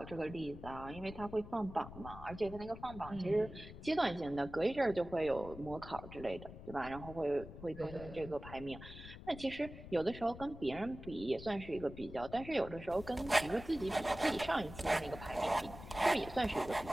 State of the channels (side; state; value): left; noise; rumble, 13 dB below the sound